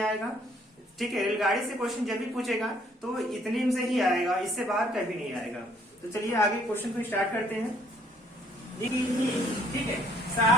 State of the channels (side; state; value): both; normal; correlation 0.63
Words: आएगा, ठीक है। रेलगाड़ी से क्वेश्चन जब भी पूछेगा तो इतने से ही आएगा, इससे बाहर कभी नहीं आएगा। तो चलिए आगे क्वेश्चन को स्टार्ट करते हैं। ठीक है,